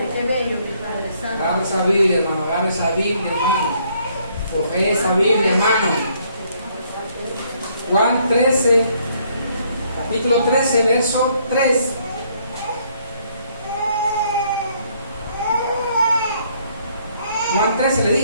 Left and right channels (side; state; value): both; inverted; correlation -0.67